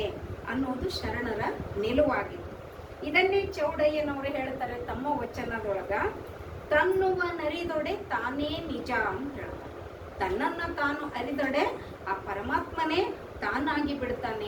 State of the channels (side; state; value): both; identical; correlation 1.00